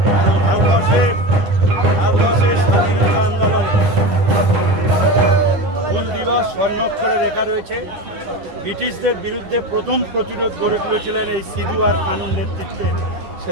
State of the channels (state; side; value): late; left; 10 ms